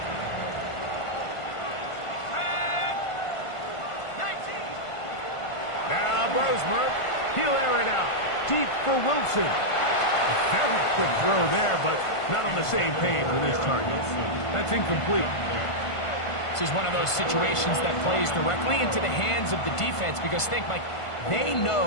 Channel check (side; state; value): right; late; 1.5 ms